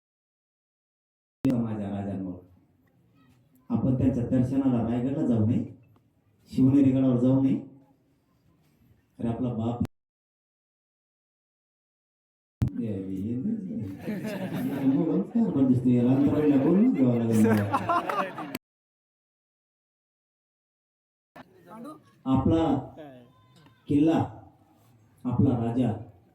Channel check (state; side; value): identical; both; correlation 1.00